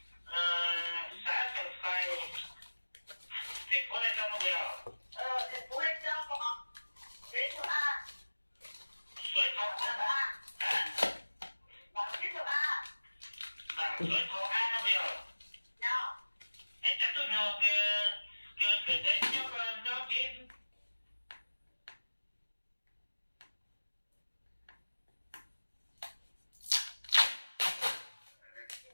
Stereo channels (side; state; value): both; inverted; correlation -1.00